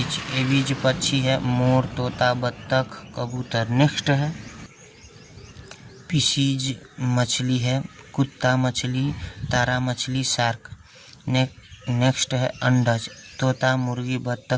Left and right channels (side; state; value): both; identical; correlation 1.00